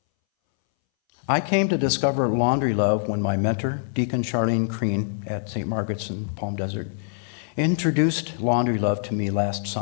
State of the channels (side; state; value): right; silent; 61 dB below the other